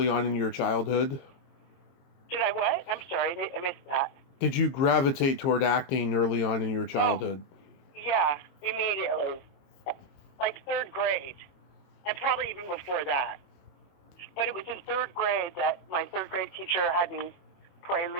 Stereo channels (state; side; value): late; right; 22 ms